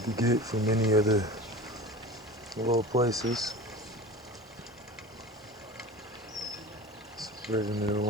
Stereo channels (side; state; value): both; normal; correlation 0.35